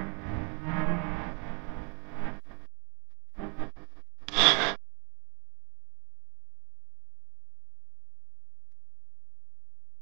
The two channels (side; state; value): left; quieter; 37.3 dB